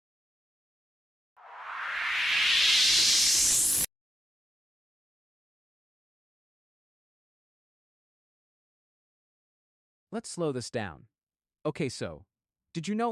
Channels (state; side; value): normal; both; correlation 0.87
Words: Let's slow this down. Okay, so, did you